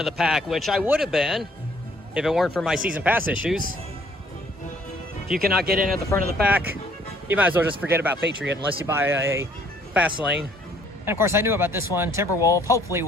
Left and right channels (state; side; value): normal; both; correlation 0.61